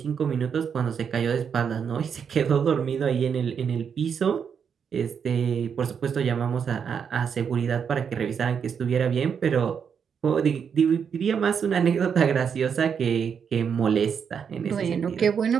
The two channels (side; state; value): left; quieter; 7.1 dB